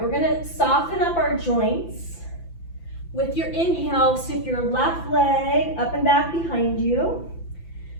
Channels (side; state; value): right; late; 5.9 ms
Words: we're gonna soften up our joints. With your inhale, sweep your left leg up and back behind you.